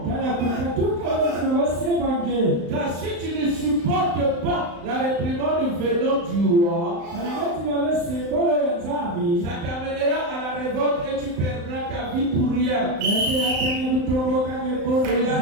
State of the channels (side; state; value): left; late; 35 ms